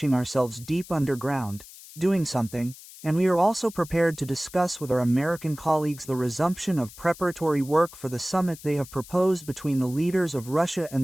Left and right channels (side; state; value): left; noise; hiss, 18 dB below the sound